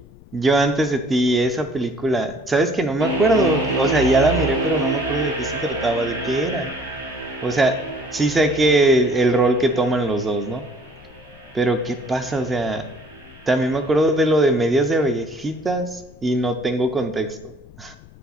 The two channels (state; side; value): noise; left; rumble, 23 dB below the sound